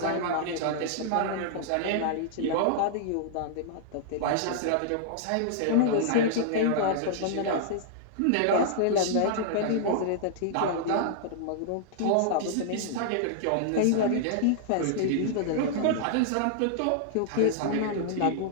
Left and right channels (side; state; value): both; different; correlation -0.01